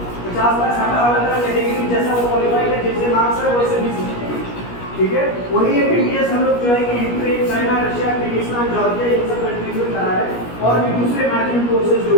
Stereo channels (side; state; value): right; late; 17 ms